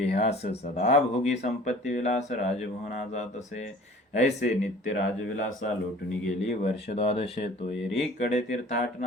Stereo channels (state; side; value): normal; both; correlation 0.47